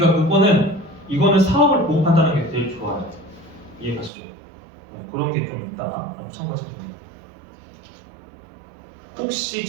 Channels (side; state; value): left; drops out; at 4.1 s